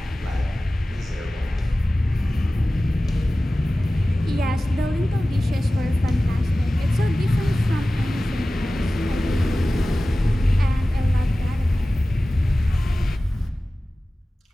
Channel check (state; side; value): normal; both; correlation 0.96